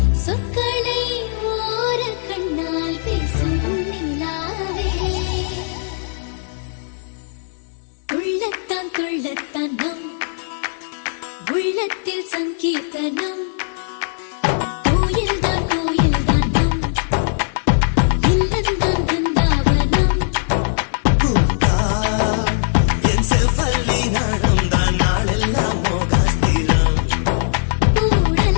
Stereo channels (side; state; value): right; silent; digital silence